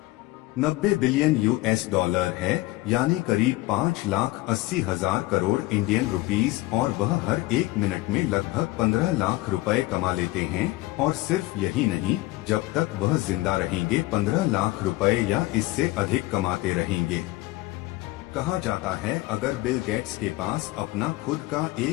90 बिलियन यूएस डॉलर है, यानी करीब 5,80,000 करोड़ इंडियन रुपीस, और वह हर एक मिनट में लगभग 15 लाख रुपए कमा लेते हैं। और सिर्फ यही नहीं, जब तक वह जिंदा रहेंगे 15 लाख रुपए या इससे अधिक कमाते रहेंगे। कहा जाता है, अगर बिल गेट्स के पास अपना खुद का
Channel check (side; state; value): right; quieter; 19.6 dB